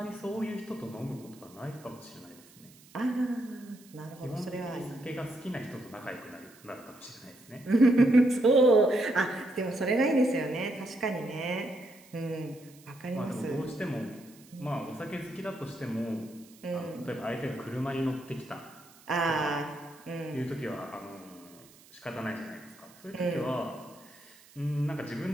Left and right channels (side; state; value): right; noise; hiss, 24 dB below the sound